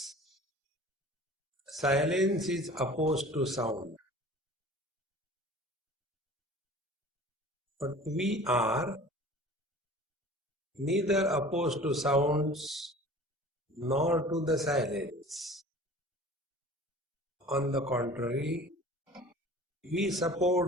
Silence is opposed to sound. But we are neither opposed to sounds nor to the silence. On the contrary, we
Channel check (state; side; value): normal; both; correlation 0.44